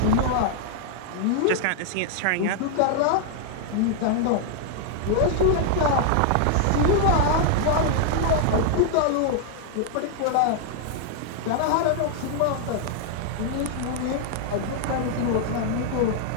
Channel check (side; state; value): both; different; correlation 0.00